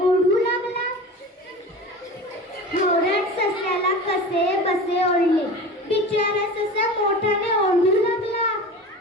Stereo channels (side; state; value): both; normal; correlation 0.34